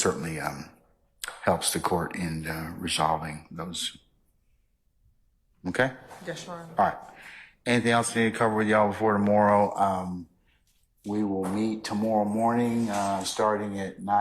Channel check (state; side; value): identical; both; correlation 1.00